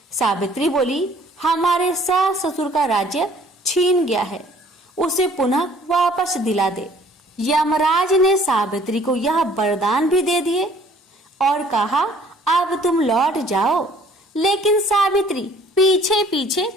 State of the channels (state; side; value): normal; both; correlation 0.56